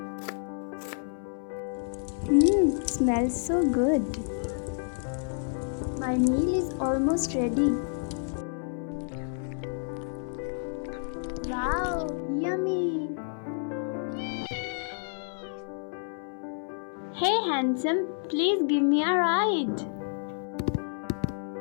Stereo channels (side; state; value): right; silent; 57 dB below the other